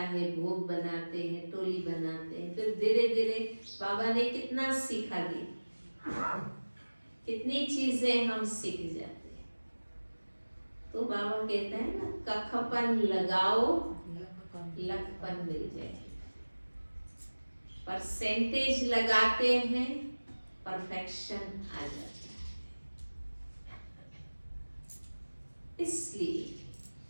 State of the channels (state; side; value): inverted; both; correlation -1.00